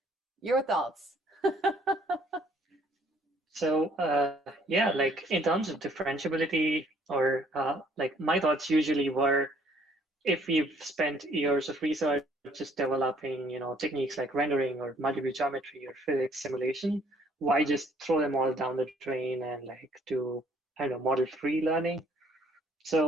your thoughts. So yeah, like in terms of differentiability, or like my thoughts usually were, if we've spent years of research just developing, techniques like rendering or multi-view geometry or physics simulation, why just throw them all down the drain and like do, I don't know, model-free learning?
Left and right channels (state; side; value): normal; both; correlation 0.61